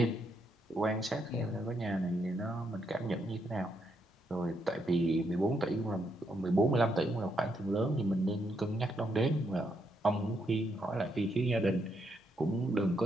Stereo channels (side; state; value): both; normal; correlation 0.78